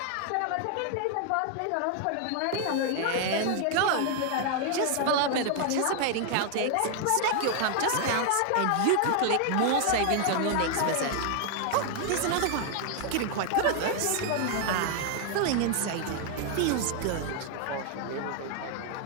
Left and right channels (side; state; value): both; different; correlation 0.00